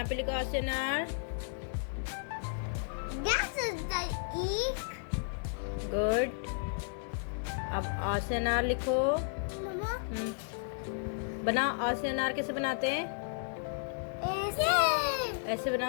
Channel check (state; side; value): silent; right; digital silence